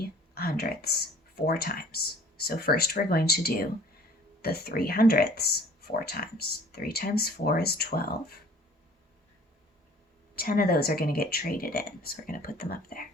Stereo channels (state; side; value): normal; both; correlation 0.51